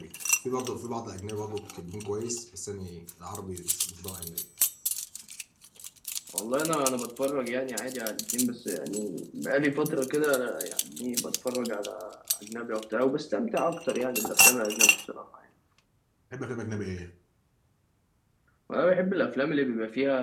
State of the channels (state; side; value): identical; both; correlation 1.00